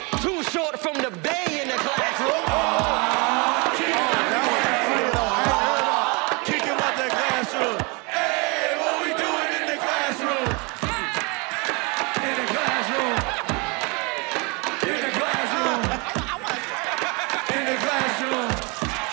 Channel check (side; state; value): left; quieter; 29.6 dB